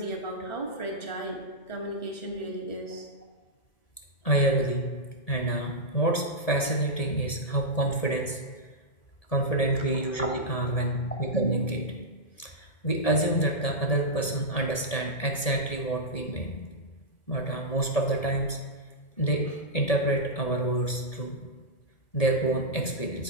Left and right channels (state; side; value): late; right; 1.7 ms